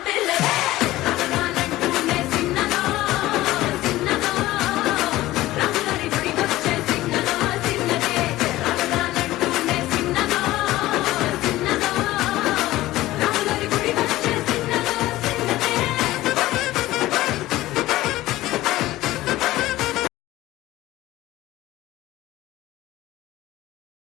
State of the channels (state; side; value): quieter; right; 16.7 dB